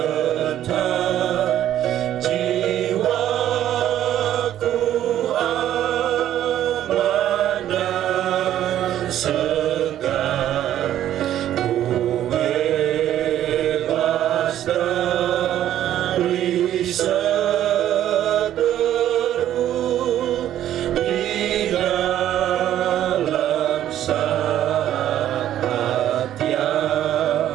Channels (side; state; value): left; quieter; 11.8 dB